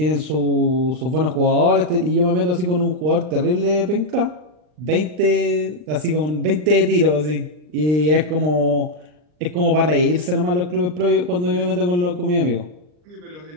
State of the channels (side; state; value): left; late; 39 ms